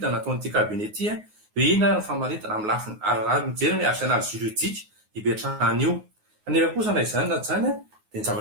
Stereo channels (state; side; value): late; left; 9.5 ms